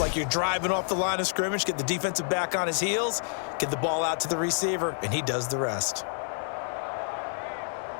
you're driving off the line of scrimmage, get the defensive back on his heels, get the ball out to the receiver, and he does the rest.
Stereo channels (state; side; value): silent; right; digital silence